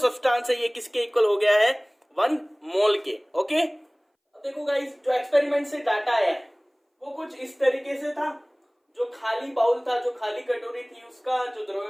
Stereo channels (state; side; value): identical; both; correlation 1.00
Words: है ये किसके इक्वल हो गया है, 1 मोल के। ओके, अब देखो गाइस, जो एक्सपेरिमेंट से डाटा आया है वो कुछ इस तरीके से था। जो खाली बाउल था, जो खाली कटोरी थी, उसका जो